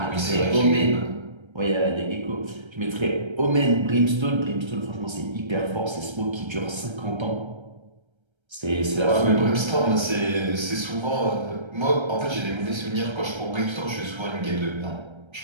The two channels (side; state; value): left; late; 1.3 ms